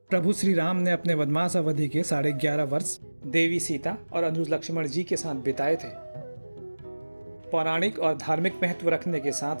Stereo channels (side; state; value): both; inverted; correlation -1.00